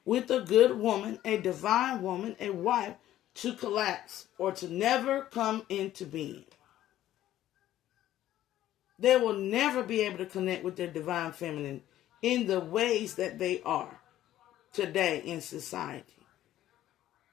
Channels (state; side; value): quieter; right; 13.2 dB